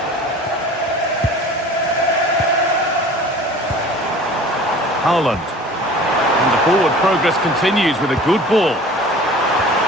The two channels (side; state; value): both; normal; correlation 0.43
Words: Haaland. And the forward progress continues with a good ball.